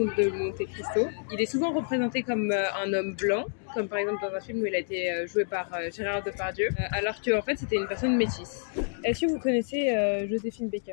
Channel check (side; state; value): right; silent; digital silence